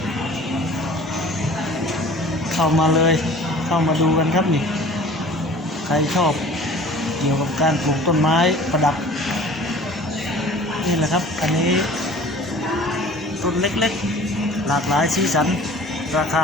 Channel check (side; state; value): both; normal; correlation 0.46